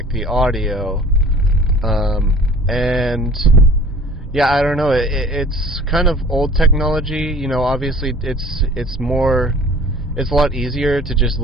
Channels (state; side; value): normal; both; correlation 0.47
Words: the audio, and yeah, I don't know. It's kind of old technology. Obviously, it's a lot easier to just